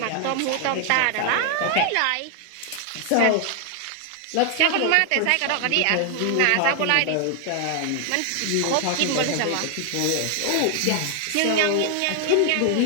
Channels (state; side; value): different; both; correlation 0.00